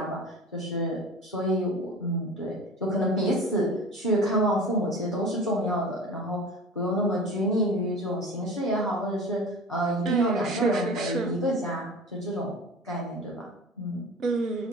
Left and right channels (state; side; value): normal; both; correlation 0.36